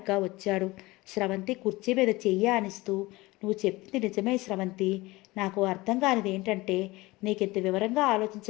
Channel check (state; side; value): quieter; right; 21.0 dB